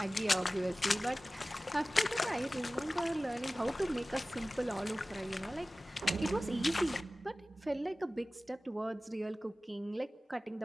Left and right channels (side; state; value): both; normal; correlation 0.97